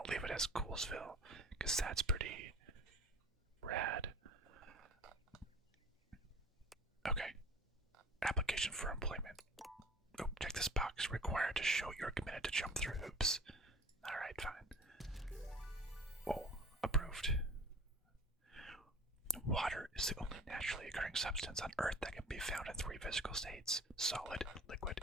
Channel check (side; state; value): both; normal; correlation 0.42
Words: leave it as Goulsville because that's pretty rad. Okay. Application for employment. Oh, check this box. Required to show you're committed to jump through hoops. Alright, fine. Oh, approved. Water is the only naturally occurring substance on Earth that can be found in 3 physical states: solid, liquid,